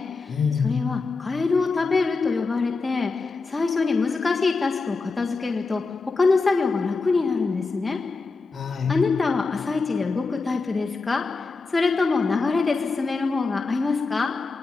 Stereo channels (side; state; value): right; quieter; 4.1 dB